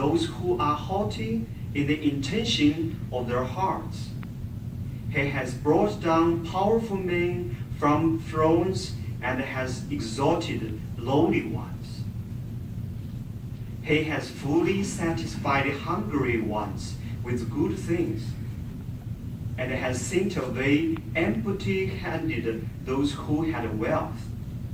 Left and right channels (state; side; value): identical; both; correlation 1.00